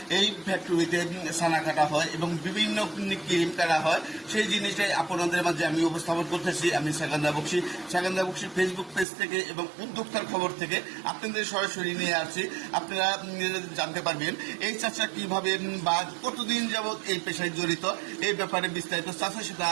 এই ফ্যাক্টরিতে ছানা কাটা হয় এবং বিভিন্ন ক্রিম কাটা হয়। সেই জিনিসটাই আপনাদের মাঝে আমি উপস্থাপন করতেছি। আমি সেকেন্দার বক্সি। সেকেন্দার বক্সির ফেসবুক পেজ থেকে এবং উদ্যোক্তার খবর থেকে আপনাদের সরাসরি নিয়ে আসছি। আপনারা জানতে পারবেন এই চাচা কিভাবে বা কতদিন যাবৎ এই পেশায় জড়িত, এই ব্যাপারে বিস্তারিত চাচার সাথে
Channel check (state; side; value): drops out; left; at 9.1 s